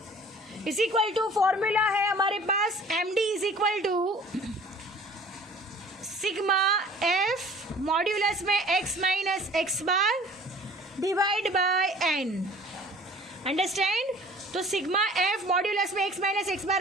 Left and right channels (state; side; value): normal; both; correlation 0.48